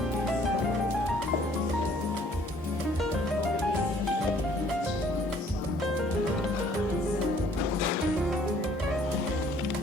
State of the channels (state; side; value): normal; both; correlation 0.59